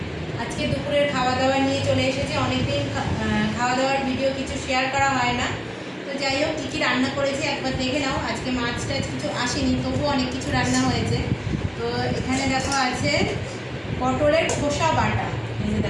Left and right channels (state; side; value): identical; both; correlation 1.00